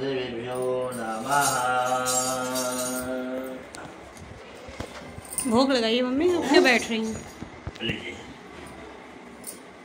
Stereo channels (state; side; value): identical; both; correlation 1.00